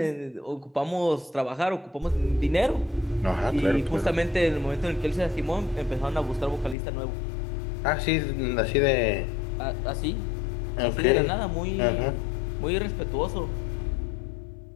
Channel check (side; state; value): right; drops out; at 6.8 s